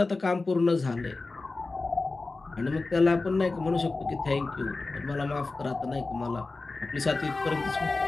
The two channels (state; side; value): quieter; right; 3.5 dB